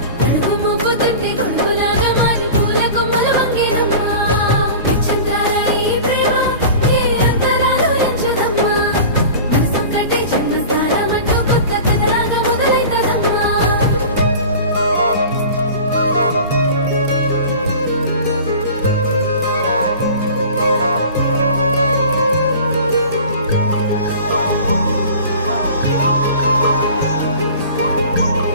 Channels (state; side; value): inverted; both; correlation -0.38